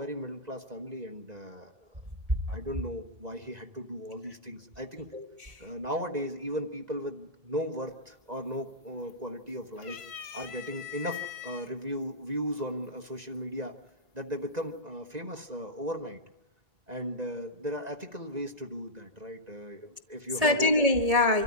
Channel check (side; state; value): left; late; 1.8 ms